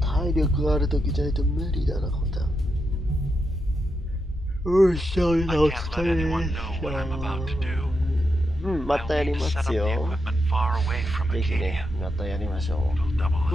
力があるときじゃないと無理だな、これ。よっしゃ、お疲れ。またやりますよ。ぜひね、またやりましょう。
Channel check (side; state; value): both; normal; correlation 0.84